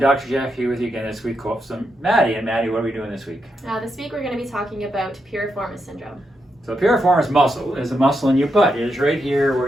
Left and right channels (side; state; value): both; normal; correlation 0.83